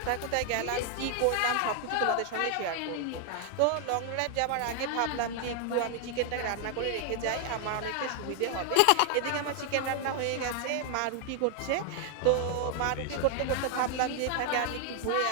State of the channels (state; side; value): different; both; correlation 0.00